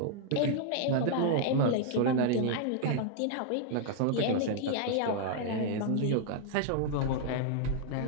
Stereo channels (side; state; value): both; different; correlation 0.00